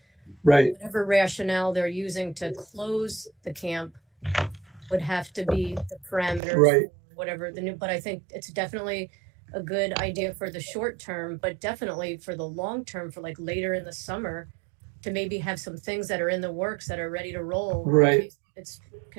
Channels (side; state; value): left; drops out; at 6.4 s